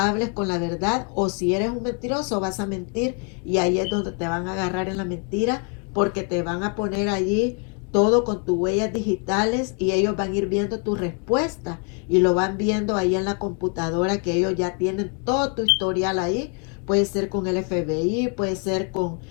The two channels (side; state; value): right; quieter; 38.1 dB